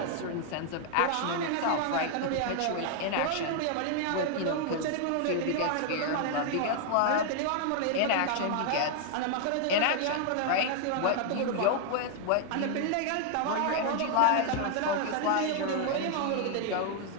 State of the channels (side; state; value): both; different; correlation 0.00